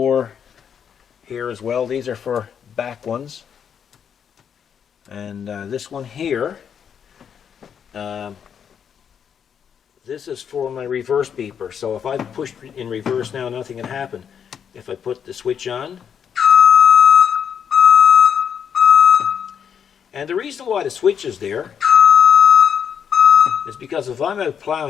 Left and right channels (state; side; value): quieter; right; 7.8 dB